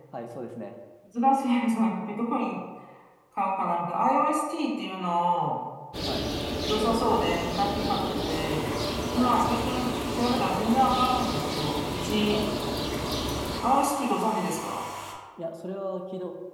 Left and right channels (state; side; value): identical; both; correlation 1.00